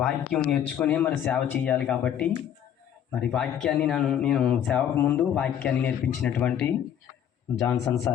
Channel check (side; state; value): right; quieter; 9.6 dB